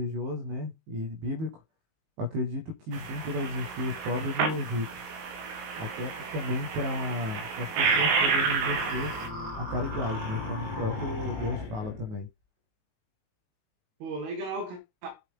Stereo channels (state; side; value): late; left; 19 ms